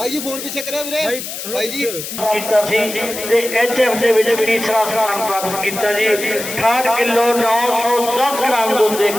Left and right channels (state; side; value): noise; left; hiss, 8 dB below the sound